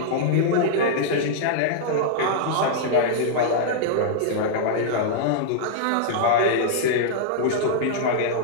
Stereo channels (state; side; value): different; both; correlation -0.02